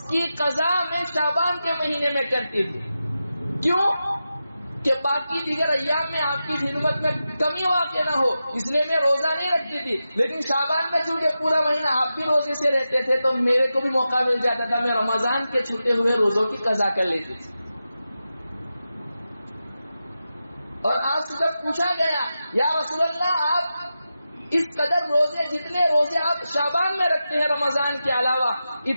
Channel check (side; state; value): both; inverted; correlation -0.91